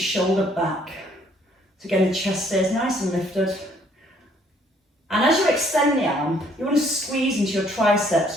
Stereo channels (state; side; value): normal; both; correlation 0.63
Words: back. So again, the chest stays nice and lifted. And as you extend the arm, you want to squeeze into your triceps.